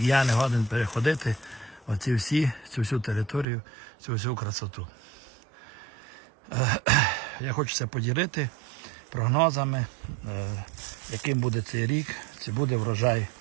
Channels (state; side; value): drops out; left; at 3.5 s